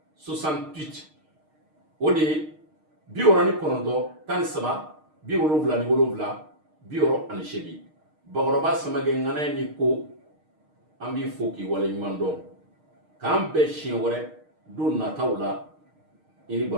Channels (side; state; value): left; late; 6.5 ms